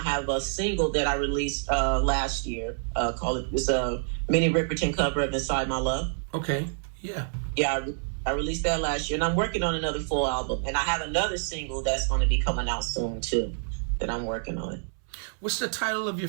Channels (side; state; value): left; silent; 60 dB below the other